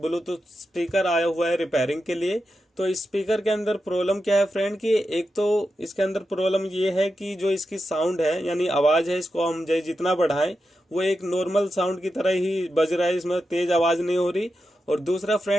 ब्लूटूथ स्पीकर आया हुआ है रिपेयरिंग के लिए। तो इस स्पीकर के अंदर प्रॉब्लम क्या है फ्रेंड कि एक तो इसके अंदर प्रॉब्लम ये है कि जो इसकी साउंड है यानी आवाज़ है, इसको हम जितना बढ़ाएं वो एक नॉर्मल साउंड की तरह ही बज रहा है, इसमें तेज आवाज़ नहीं हो रही। और दूसरा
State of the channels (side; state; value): both; normal; correlation 0.89